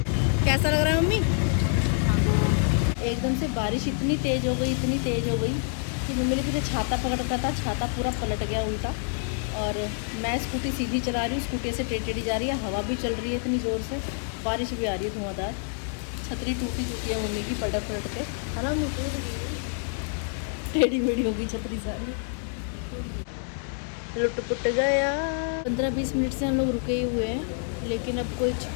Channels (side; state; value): right; silent; 57 dB below the other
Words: लग रहा है मम्मी? एकदम से बारिश इतनी तेज हो गई, इतनी तेज हो गई कि मम्मी ने फिर छाता पकड़ रखा था, छाता पूरा पलट गया उल्टा। और मैं स्कूटी सीधी चला रही हूँ, स्कूटी से टेढ़ी जा रही है, हवा भी चल रही है इतनी ज़ोर से, बारिश भी आ रही है धुआंधार। छतरी टूटी चुकी है मम्मी की पलट पलट के, है ना मम्मी? टेढ़ी मेढ़ी होगी छतरी सारी, लुट पुट गया। 15-20 मिनट से हम लोग रुके ही हुए हैं, लेकिन अब कुछ